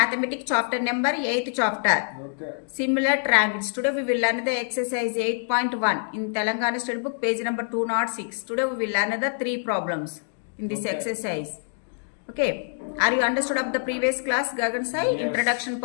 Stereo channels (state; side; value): silent; right; digital silence